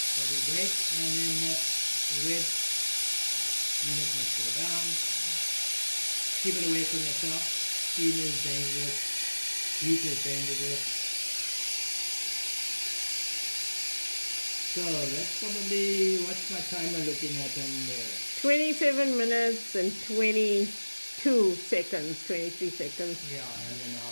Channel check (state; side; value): inverted; both; correlation -1.00